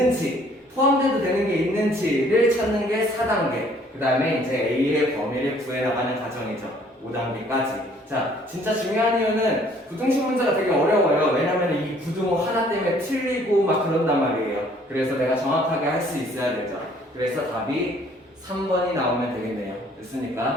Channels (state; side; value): normal; both; correlation 0.59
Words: 포함돼도 되는 게 있는지를 찾는 게 4단계. 그 다음에 이제 A의 범위를 구해나가는 과정이죠. 5단계까지. 자, 진짜 중요한 이유는 부등식 문제가 되게 어려워요. 왜냐면 이 부등호 하나 때문에 틀리고 막 그런단 말이에요. 그래서 내가 정확하게 할 수 있어야 되죠. 그래서 답이 3번이 나오면 되겠네요.